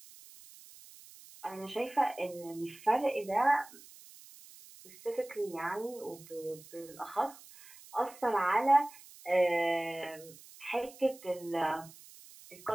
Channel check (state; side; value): noise; right; hiss, 20 dB below the sound